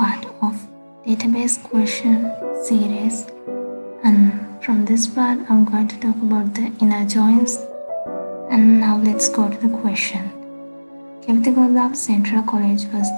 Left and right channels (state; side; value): inverted; both; correlation -1.00